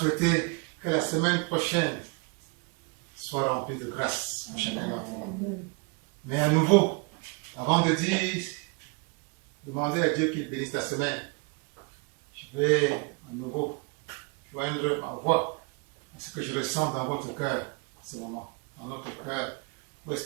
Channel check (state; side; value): quieter; left; 31.5 dB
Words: que la semaine prochaine soit remplie de grâce pour chacun d'entre nous. Mais à nouveau, avant de dire, demander à Dieu qu'il bénisse la semaine, je vais à nouveau joindre ma voix à ce que je ressens dans votre cœur en ce moment, dans notre cœur, pour